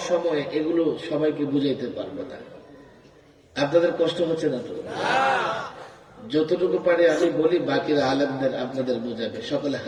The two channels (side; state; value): both; identical; correlation 1.00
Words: সময়ে এগুলো সবাইকে বুঝাইতে পারবো না। আপনাদের কষ্ট হচ্ছে না তো? যতটুকু পারে আমি বলি, বাকিরা আলেমদের আপনাদের বুঝাবে। সকলে